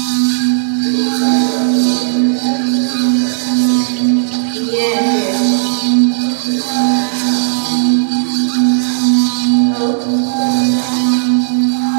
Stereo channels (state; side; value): silent; left; digital silence